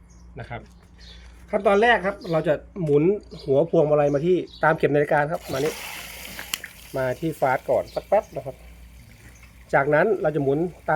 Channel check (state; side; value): identical; both; correlation 1.00